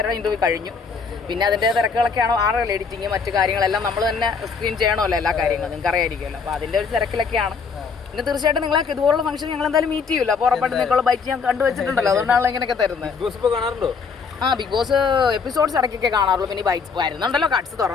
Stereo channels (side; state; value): right; quieter; 5.3 dB